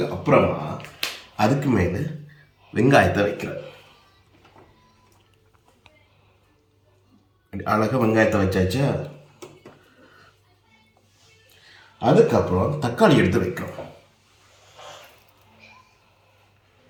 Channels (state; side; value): identical; both; correlation 1.00